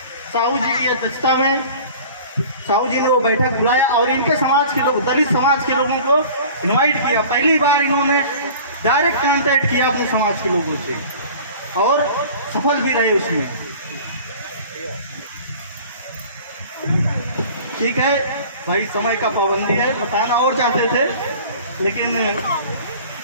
साहू जी की अध्यक्षता में साहू जी ने वो बैठक बुलाया और इनके समाज के लोग, दलित समाज के लोगों को इनवाइट किया। पहली बार इन्होंने डायरेक्ट कांटेक्ट किया अपने समाज के लोगों से, और सफल भी रहे उसमें। ठीक है भाई, समय का पाबंदी है, बताना और चाहते थे लेकिन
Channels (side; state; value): both; inverted; correlation -0.44